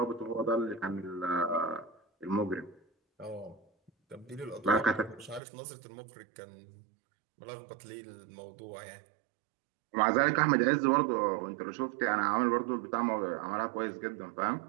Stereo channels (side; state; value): left; drops out; at 5.4 s